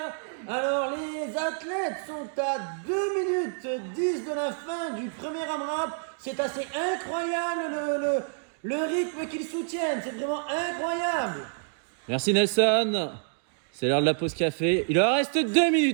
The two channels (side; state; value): left; silent; digital silence